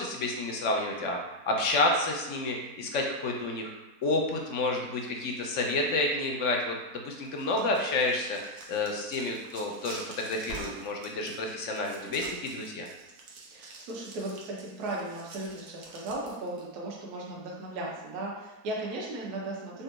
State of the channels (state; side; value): late; left; 4.6 ms